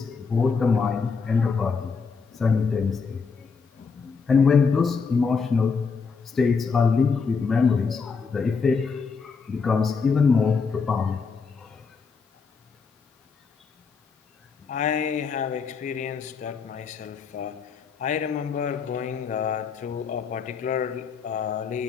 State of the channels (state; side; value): quieter; right; 5.3 dB